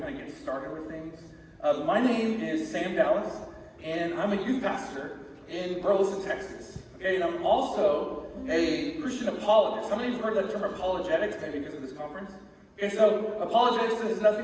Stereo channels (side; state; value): both; identical; correlation 1.00